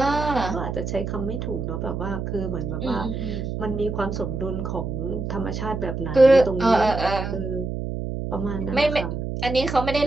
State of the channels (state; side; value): noise; right; hum, 4 dB below the sound